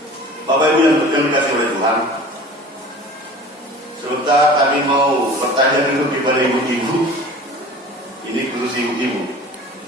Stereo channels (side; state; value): both; normal; correlation 0.41